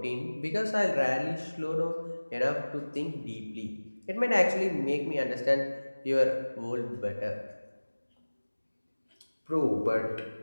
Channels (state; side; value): inverted; both; correlation -1.00